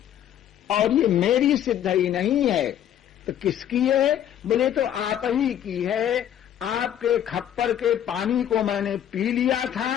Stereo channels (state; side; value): quieter; right; 10.5 dB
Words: और ये मेरी सिद्धि नहीं है। तो किसकी है? बोले तो आप ही की है, आपके खप्पर के पानी को मैंने पी लिया था,